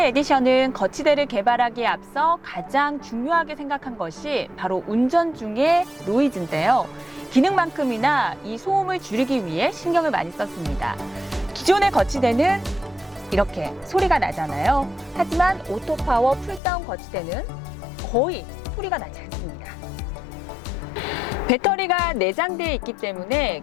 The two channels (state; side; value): drops out; right; at 16.6 s